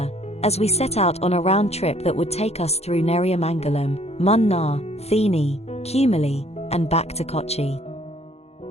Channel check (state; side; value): late; right; 0.31 ms